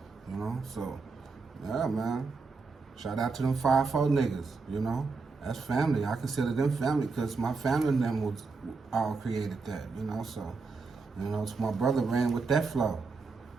you know. So, yeah, man. Shout out to them 5-4 niggas, you know. That's family. I consider them family because my family and them was all created that, you know. So, you know, so my brother ran with that flow,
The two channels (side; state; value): left; quieter; 4.4 dB